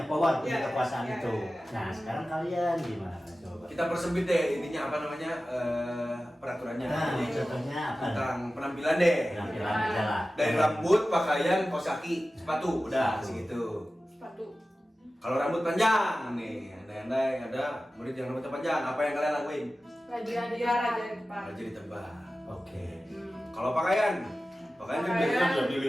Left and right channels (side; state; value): both; normal; correlation 0.95